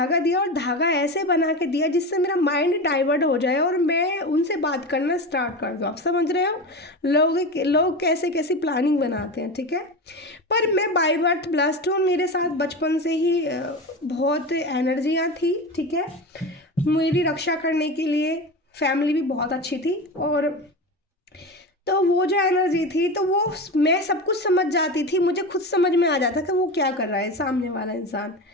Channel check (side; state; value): both; normal; correlation 0.24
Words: दिया और धागा ऐसे बना के दिया जिससे मेरा माइंड डाइवर्ट हो जाए और मैं उनसे बात करना स्टार्ट कर दूँ। आप समझ रहे हो लोग कैसे कैसी प्लानिंग बनाते हैं, ठीक है। पर मैं बाय बर्थ ब्लेस्ड हूँ, मेरे साथ बचपन से ही बहुत एनर्जियाँ थी, ठीक है। मेरी रक्षा करने के लिए फैमिली भी बहुत अच्छी थी। और तो वो जो एनर्जी थी, तो वो मैं सब कुछ समझ जाती थी, मुझे खुद समझ में आ जाता कि वो क्या कर रहा है सामने वाला इंसान।